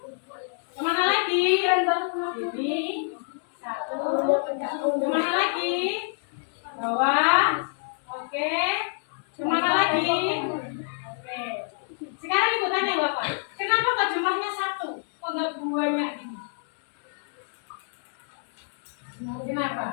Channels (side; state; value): right; silent; 60 dB below the other